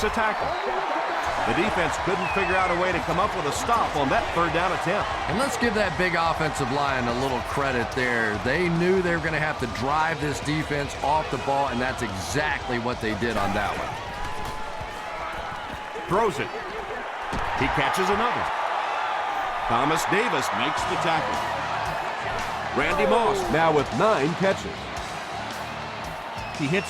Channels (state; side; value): identical; both; correlation 1.00